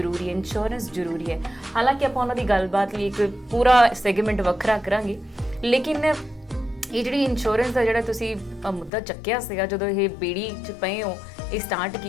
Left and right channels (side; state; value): right; drops out; at 8.9 s